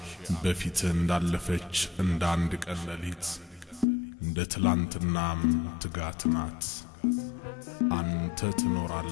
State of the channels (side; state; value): right; drops out; at 3.9 s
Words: بفيتن دالفتش انداندك الليت دتلانت النام تقاتنات أنت تنور